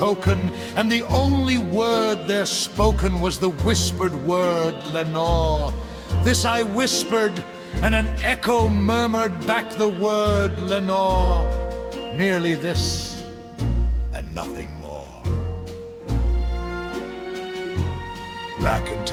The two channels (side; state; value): both; identical; correlation 1.00